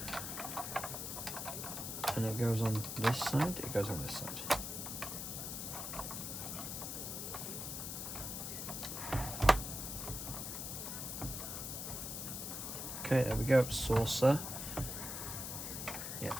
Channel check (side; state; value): left; noise; hiss, 5 dB below the sound